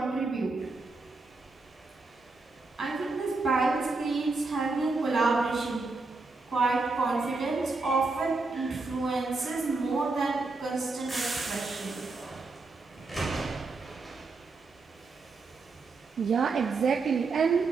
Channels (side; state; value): left; quieter; 3.8 dB